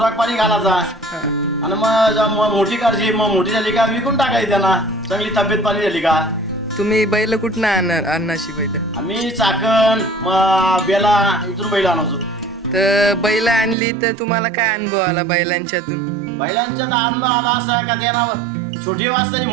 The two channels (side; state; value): left; drops out; at 13.8 s